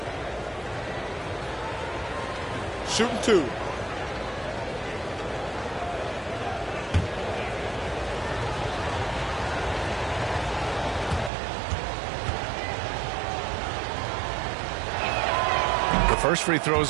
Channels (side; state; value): left; drops out; at 11.3 s